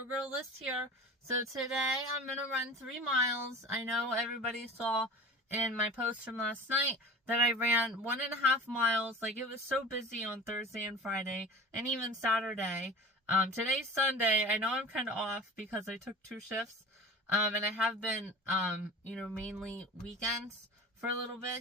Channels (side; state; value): both; normal; correlation 0.37